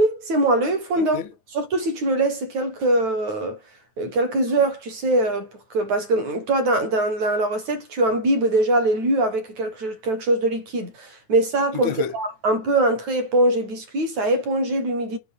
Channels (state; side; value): late; left; 9.1 ms